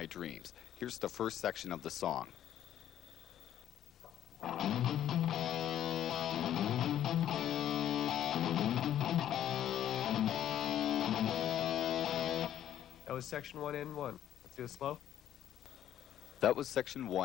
Dreams. Here's the first section of the song. That was section 1 and 1. Let's do it slow. That was section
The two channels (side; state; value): right; quieter; 11.1 dB